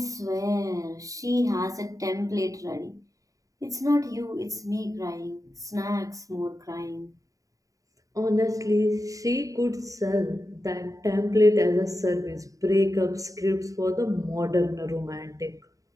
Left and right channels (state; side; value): late; left; 0.16 ms